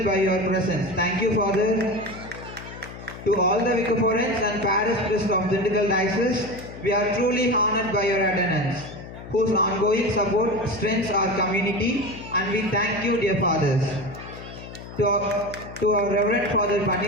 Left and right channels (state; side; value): noise; left; hum, 14 dB below the sound